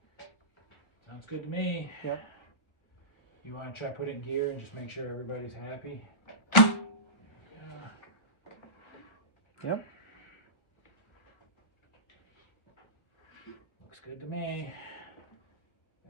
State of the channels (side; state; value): right; late; 1.5 ms